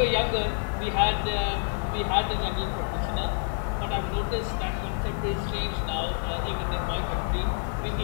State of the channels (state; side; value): silent; right; 58 dB below the other